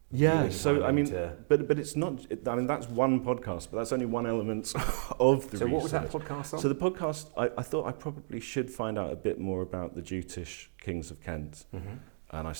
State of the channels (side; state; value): left; silent; digital silence